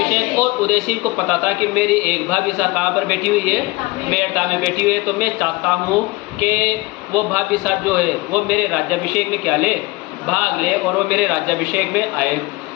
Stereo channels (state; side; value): quieter; right; 22.6 dB